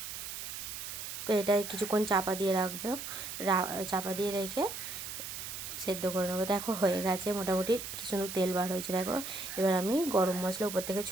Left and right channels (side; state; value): right; noise; hiss, 7 dB below the sound